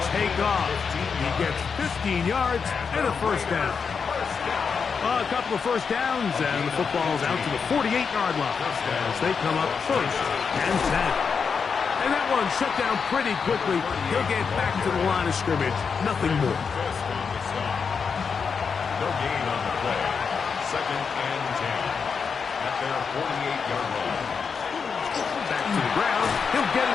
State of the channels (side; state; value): right; quieter; 5.8 dB